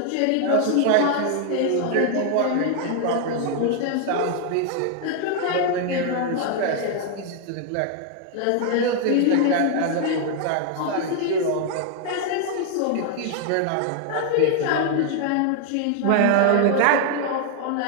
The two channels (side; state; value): both; different; correlation 0.00